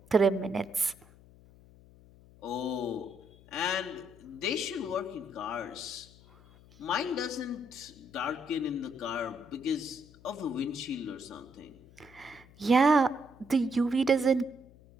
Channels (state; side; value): noise; left; hum, 24 dB below the sound